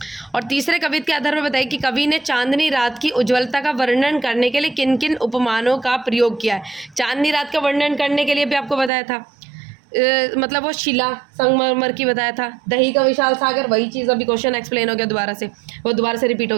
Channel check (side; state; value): left; drops out; at 8.9 s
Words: और तीसरे कविता के आधार पर बताइए कि कवि ने चांदनी रात की उज्ज्वलता का वर्णन करने के लिए किन किन उपमानों का प्रयोग किया है। चांदनी रात का वर्णन करने के लिए भी आपको बताया था, मतलब वो शिला संगमरमर की बताया था, दही का विशाल सागर, वही चीज़ अभी क्वेश्चन एक्सप्लेन हो गया दोबारा से, वो दोबारा से रिपीट हो